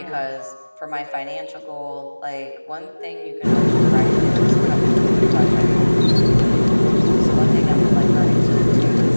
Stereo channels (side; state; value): both; inverted; correlation -1.00